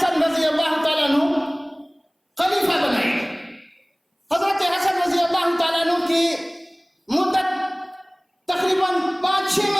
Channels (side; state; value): both; identical; correlation 1.00